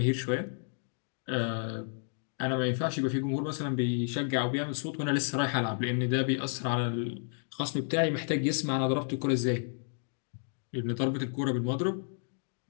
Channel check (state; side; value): silent; right; digital silence